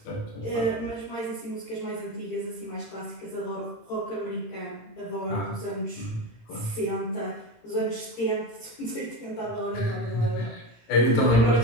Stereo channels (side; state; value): right; late; 18 ms